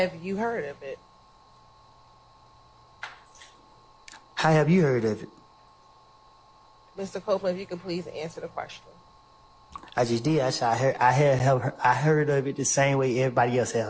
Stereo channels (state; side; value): identical; both; correlation 1.00